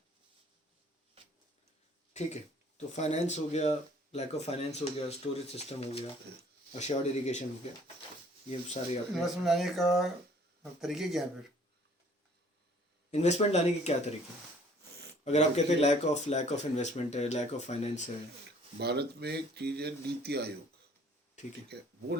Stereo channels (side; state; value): both; normal; correlation 0.56